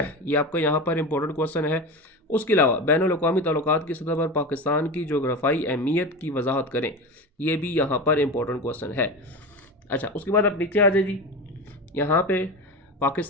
आपका यहाँ पर इंपॉर्टेंट क्वेश्चन है। उसके अलावा बैनुल अक़वामी ताल्लुकात की सतह पर पाकिस्तान की जोग्राफ़ाई अहमियत की वजाहत करें, ये भी यहाँ पर इंपॉर्टेंट क्वेश्चन है। अच्छा, उसके बाद आप नीचे आ जाए जी, यहाँ पे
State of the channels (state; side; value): normal; both; correlation 0.25